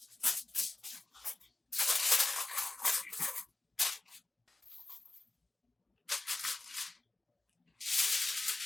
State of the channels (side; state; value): right; quieter; 3.1 dB